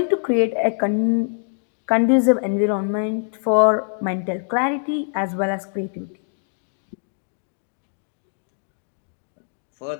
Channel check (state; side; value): silent; right; 63 dB below the other